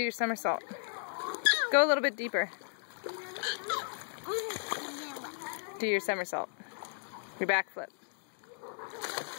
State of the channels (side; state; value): right; silent; digital silence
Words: your somersault. Go a little bit deeper. Do your somersault. Your backflip.